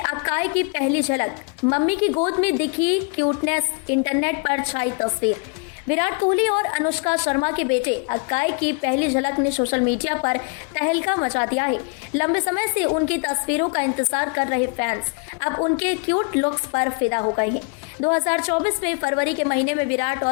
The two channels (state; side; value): quieter; right; 35.9 dB